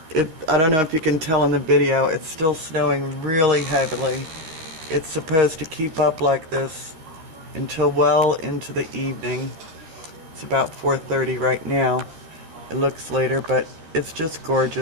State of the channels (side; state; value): left; late; 13 ms